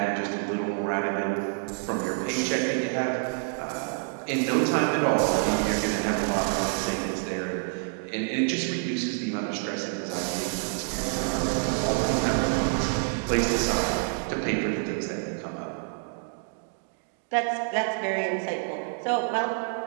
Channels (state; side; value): silent; left; 56 dB below the other